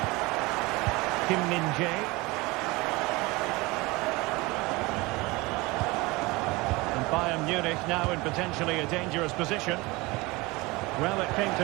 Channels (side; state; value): left; quieter; 23.2 dB